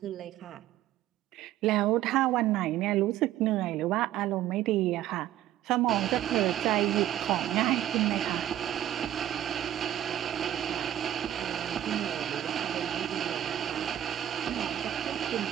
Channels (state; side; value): quieter; left; 12.3 dB